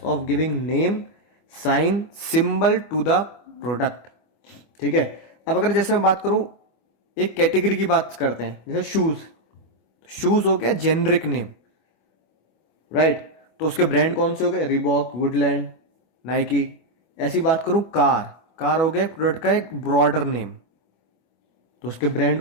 of giving name, sign, symbol to the product. ठीक है, अब अगर जैसे मैं बात करूं, एक कैटेगरी की बात करते हैं, जैसे शूज। शूज हो गया जेनरिक नेम, राइट, तो उसके ब्रांड कौन से हो गए? Reebok, Woodland, Nike. ऐसी बात करूं कार, कार हो गया प्रोडक्ट का एक ब्रॉडर नेम, तो उसके ब्रांड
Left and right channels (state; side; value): late; right; 25 ms